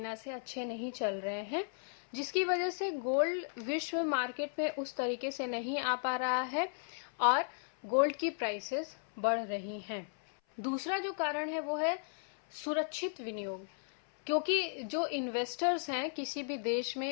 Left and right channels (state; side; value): silent; right; 54 dB below the other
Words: से अच्छे नहीं चल रहे हैं, जिसकी वजह से गोल्ड विश्व मार्केट में उस तरीके से नहीं आ पा रहा है और गोल्ड की प्राइसेस बढ़ रही हैं। दूसरा जो कारण है वो है सुरक्षित विनियोग, क्योंकि जो इन्वेस्टर्स हैं, किसी भी देश